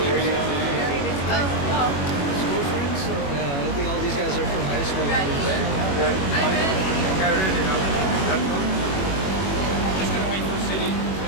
school friends? So. Yeah, I think all these guys are from high school. I'm just going to wait for City.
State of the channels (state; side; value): late; right; 21 ms